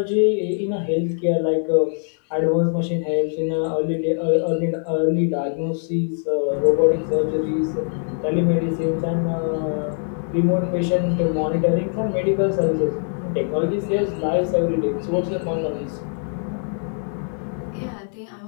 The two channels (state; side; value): silent; right; 59 dB below the other